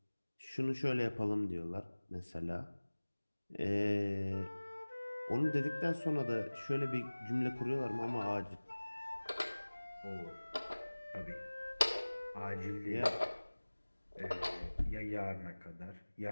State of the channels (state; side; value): inverted; both; correlation -1.00